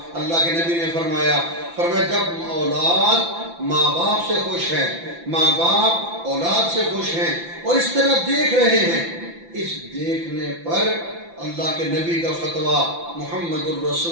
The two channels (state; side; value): late; left; 5.9 ms